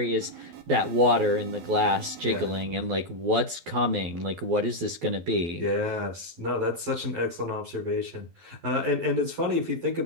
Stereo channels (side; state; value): left; late; 12 ms